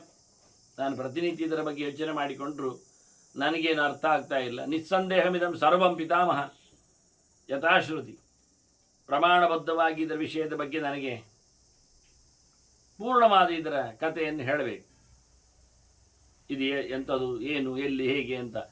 ನಾನು ಪ್ರತಿನಿತ್ಯ ಇದರ ಬಗ್ಗೆ ಯೋಚನೆ ಮಾಡಿಕೊಂಡ್ರು ನನಗೇನು ಅರ್ಥ ಆಗ್ತಾ ಇಲ್ಲ. ನಿಸ್ಸಂದೇಹಮಿದಂ ಸರ್ವಂ ಪಿತಾಮಹ ಯಥಾಶ್ರುತಿ. ಪ್ರಮಾಣಬದ್ಧವಾಗಿ ಇದರ ವಿಷಯದ ಬಗ್ಗೆ ನನಗೆ ಪೂರ್ಣವಾದ ಇದರ ಕಥೆಯನ್ನು ಹೇಳಬೇಕು. ಇದು ಎಂಥದ್ದು, ಏನು, ಎಲ್ಲಿ, ಹೇಗೆ ಅಂತ.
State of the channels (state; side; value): identical; both; correlation 1.00